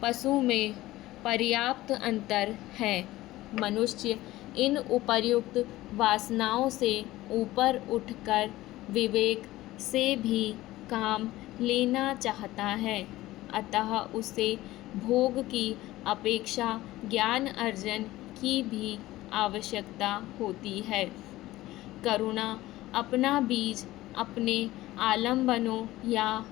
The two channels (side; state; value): right; quieter; 16.9 dB